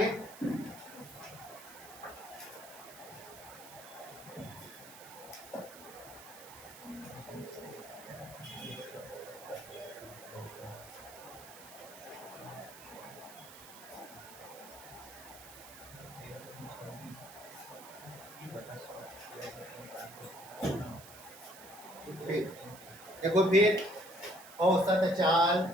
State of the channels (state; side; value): noise; right; hiss, 16 dB below the sound